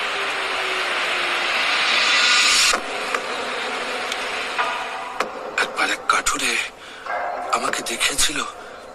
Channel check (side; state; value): both; identical; correlation 1.00